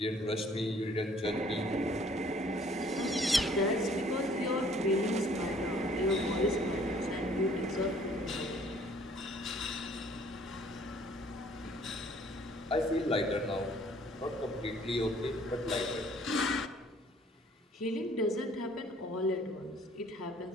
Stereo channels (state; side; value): normal; both; correlation 0.58